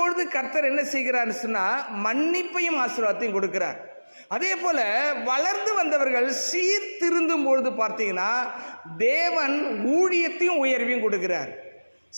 கர்த்தர் என்ன செய்கிறார்னு சொன்னா மன்னிப்பையும் ஆசீர்வாதத்தையும் கொடுக்கிறார். அதே போல வளர்ந்து வந்தவர்கள் சீர்திருந்தும் பொழுது பார்த்தீங்கன்னா தேவன் ஊழியத்தையும் உயர்வையும் கொடுக்கிறார்.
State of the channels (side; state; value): both; inverted; correlation -1.00